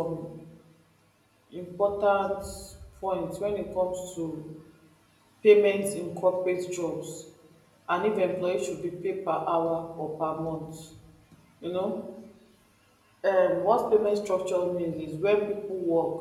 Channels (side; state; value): both; identical; correlation 1.00